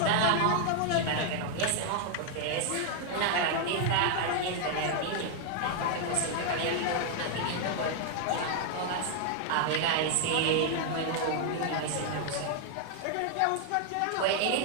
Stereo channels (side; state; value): both; different; correlation 0.00